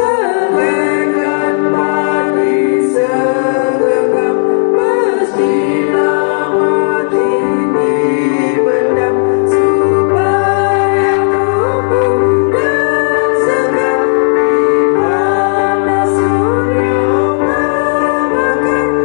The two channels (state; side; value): silent; right; digital silence